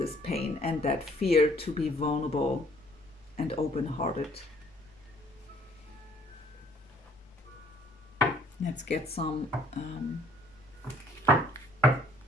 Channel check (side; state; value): both; normal; correlation 0.61